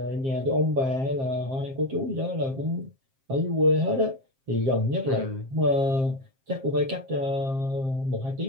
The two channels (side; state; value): left; late; 7.5 ms